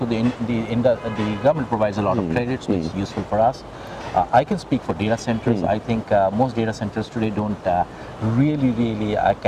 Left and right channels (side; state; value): both; identical; correlation 1.00